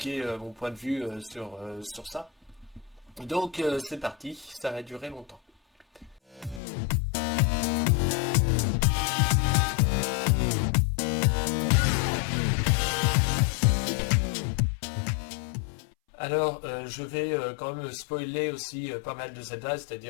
mon point de vue sur ça. Donc, c'est parti, ça va durer longtemps. Alors, je vais quand même spoiler aussi pas mal de Zelda,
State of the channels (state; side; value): drops out; right; at 6.6 s